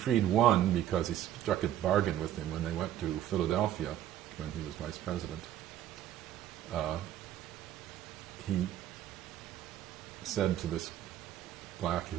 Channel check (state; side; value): quieter; left; 11.7 dB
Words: one because he struck a bargain with him when they went to Philadelphia when he was vice president. He said to this black